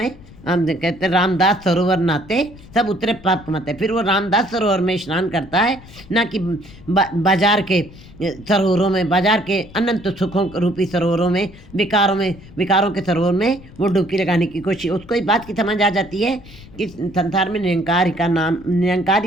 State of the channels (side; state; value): left; noise; rumble, 20 dB below the sound